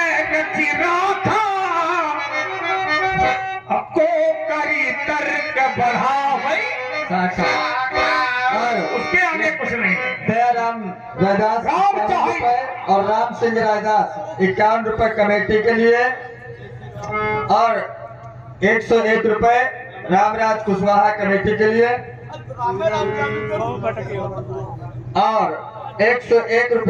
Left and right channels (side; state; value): both; identical; correlation 1.00